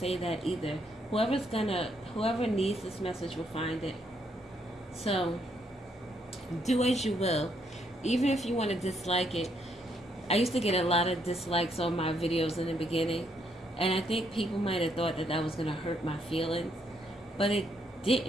that either. Whoever needs this message will find it. So do as you will. Even if you want to dislike it. I used to get a lot of dislikes on my videos in the beginning, and I think people might have thought that that was going to hurt my feelings, but it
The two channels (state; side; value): normal; both; correlation 0.73